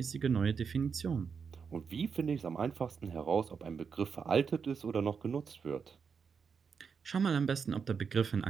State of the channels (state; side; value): quieter; left; 6.1 dB